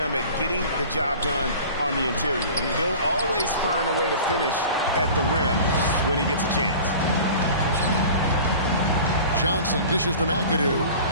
at getting the job done on the interior. He'll always find a way to finish at the rim when he gets a chance. Johnson dishes to McAdoo,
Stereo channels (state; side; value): inverted; both; correlation -0.40